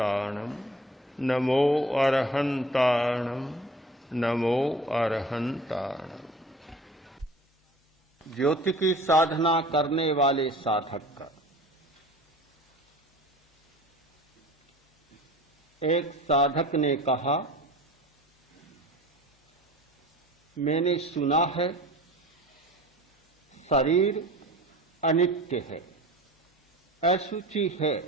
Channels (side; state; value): both; normal; correlation 0.43